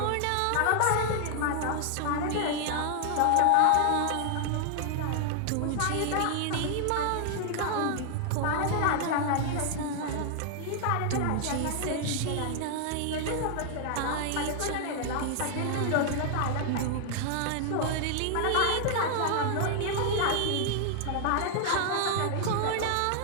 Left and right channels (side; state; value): both; different; correlation 0.00